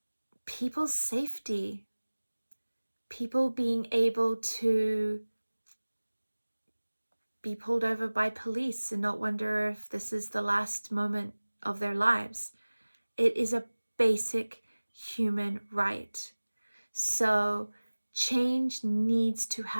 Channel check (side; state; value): both; inverted; correlation -1.00